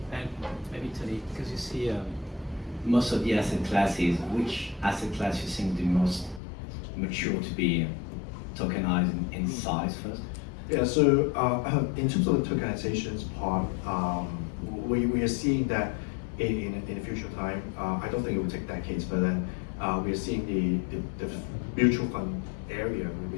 And maybe Tony, because you see most of the asset classes, which asset class you think the most mature to be tokenized in size first? Yeah, so in terms of the tokenizations part, we are seeing that in the future time, I don't think it will take decades, but then we are seeing the mutual fund area will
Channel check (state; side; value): drops out; right; at 6.4 s